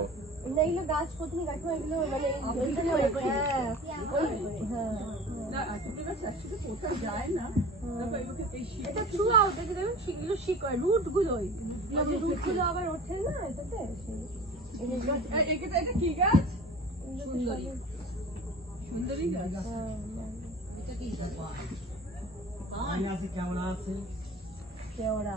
এগুলো গাছ প্রথমে গাছ এগুলো মানে যায় না। এটা থ্রু আউট এটা দেখুন এগুলো শিকড় রুট গুলোই রুট গুলো আবার ওঠে না এটাতে। এটা কি গাছ? সুন্দরী সুন্দরী গাছ। এটা কি কেওড়া আছে? কেওড়া,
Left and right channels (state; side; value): normal; both; correlation 0.40